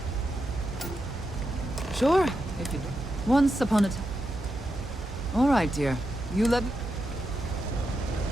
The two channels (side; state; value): both; normal; correlation 0.86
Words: Sure, if you do. Once upon a time. All right, dear. You let me...